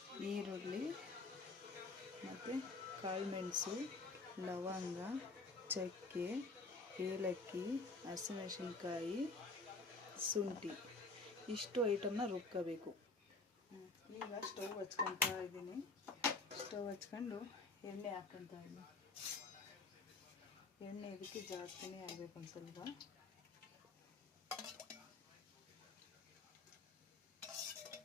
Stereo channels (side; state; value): right; quieter; 3.5 dB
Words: ಈರುಳ್ಳಿ ಮತ್ತು ಕಾಳುಮೆಣಸು, ಲವಂಗ, ಚಕ್ಕೆ, ಏಲಕ್ಕಿ, ಹಸಿಮೆಣಸಿನ್ಕಾಯಿ, ಶುಂಠಿ ಇಷ್ಟು ಐಟಮ್ನ ರುಬ್ಕೋಬೇಕು. ಈಗ ಸ್ಟವ್ ಹಚ್ಕೊತಾ ಇದ್ದೀನಿ. ಸ್ಟವ್ ಹಚ್ಕೊಂಡು ಎಣ್ಣೆ ಹಾಕ್ಕೊತಾ ಇದ್ದೀನಿ. ಎಣ್ಣೆ ಇದಕ್ಕೆ ಜಾಸ್ತಿನೇ ಆಗಬೇಕು ಒಂದು ಸ್ವಲ್ಪ.